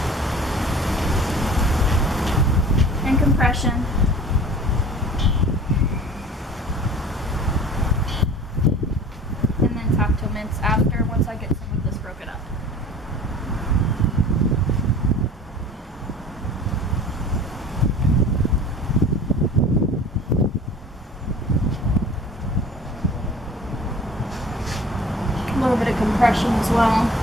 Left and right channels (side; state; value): both; normal; correlation 0.44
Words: and compression. And then tap toe mints after, once I get some of this broken up. A little bit of compression as well.